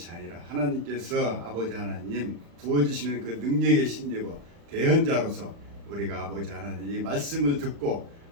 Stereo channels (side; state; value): left; late; 35 ms